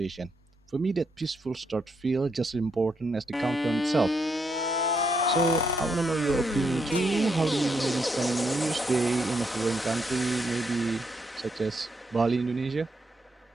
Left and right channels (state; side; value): normal; both; correlation 0.77